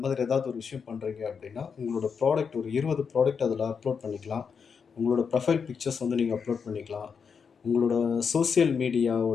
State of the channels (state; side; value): quieter; right; 6.1 dB